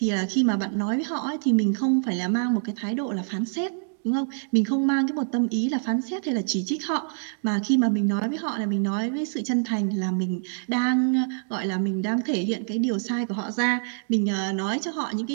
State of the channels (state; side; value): silent; left; digital silence